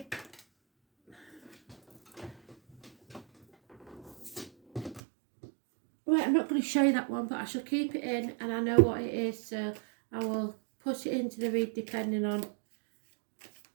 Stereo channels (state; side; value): drops out; left; at 5.0 s